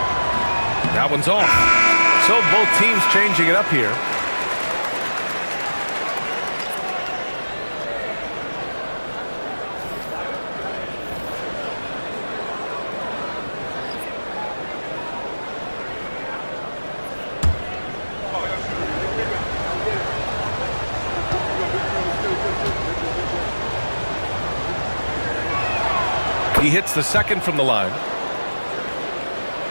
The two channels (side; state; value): both; inverted; correlation -1.00